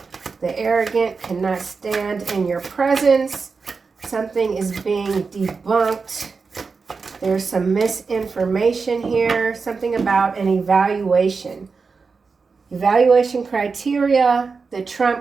The arrogant cannot stand in your presence. Something is being debunked. There's some misinformation here. Something about an evaluation. Evaluation criteria, the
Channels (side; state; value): left; quieter; 4.8 dB